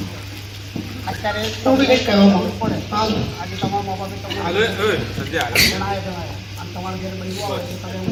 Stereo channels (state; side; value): identical; both; correlation 1.00